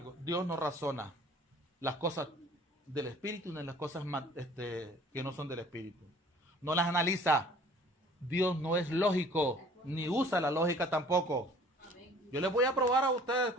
Dios no razona las cosas del Espíritu ni las cosas que no son del Espíritu. No las analiza. Dios no es lógico, ni usa la lógica tampoco. Yo les voy a probar a ustedes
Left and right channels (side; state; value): both; normal; correlation 0.51